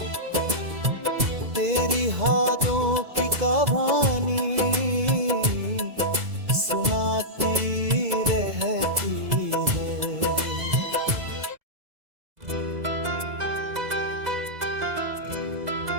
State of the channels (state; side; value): late; left; 2.0 ms